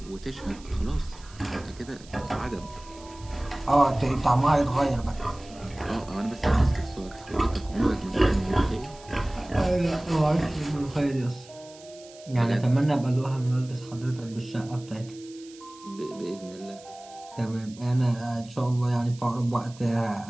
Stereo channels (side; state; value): right; noise; hiss, 22 dB below the sound